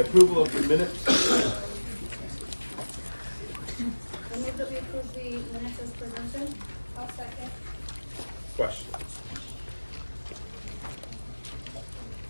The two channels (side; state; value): both; inverted; correlation -1.00